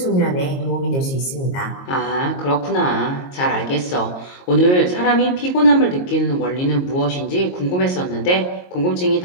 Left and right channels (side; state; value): right; late; 22 ms